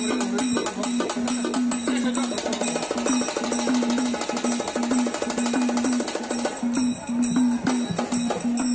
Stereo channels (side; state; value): both; identical; correlation 1.00